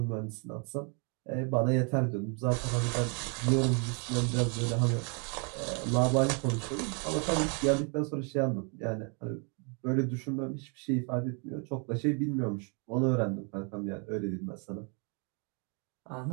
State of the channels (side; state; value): left; quieter; 36.6 dB